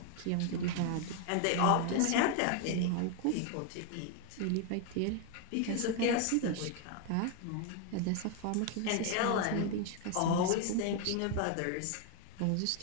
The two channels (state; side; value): different; both; correlation 0.01